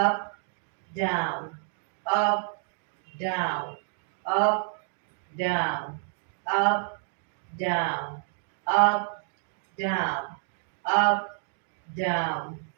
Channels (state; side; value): silent; left; digital silence